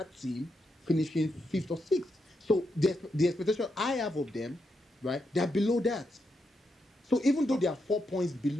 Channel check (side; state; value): both; normal; correlation 0.83